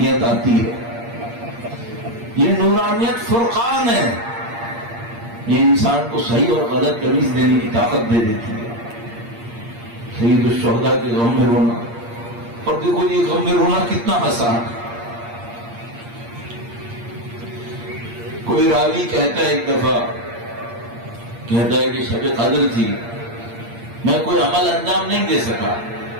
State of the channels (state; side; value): late; left; 8.6 ms